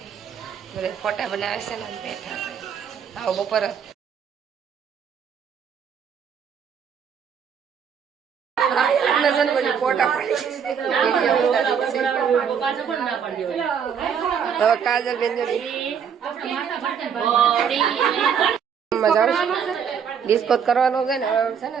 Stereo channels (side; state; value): left; quieter; 7.4 dB